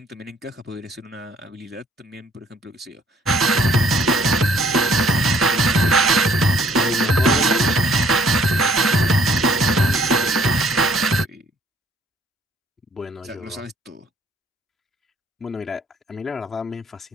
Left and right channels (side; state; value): both; normal; correlation 0.61